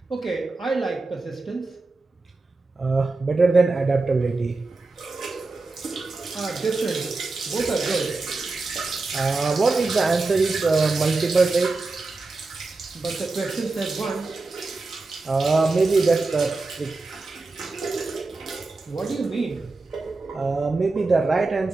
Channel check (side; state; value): left; quieter; 3.5 dB